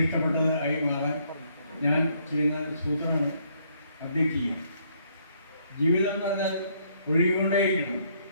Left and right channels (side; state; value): both; inverted; correlation -0.68